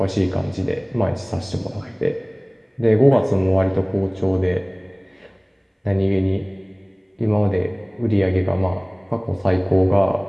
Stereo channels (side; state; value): both; identical; correlation 1.00